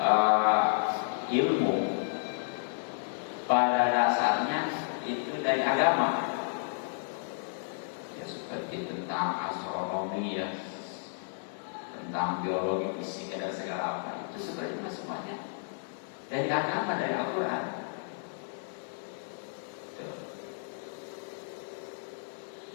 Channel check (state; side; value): silent; right; digital silence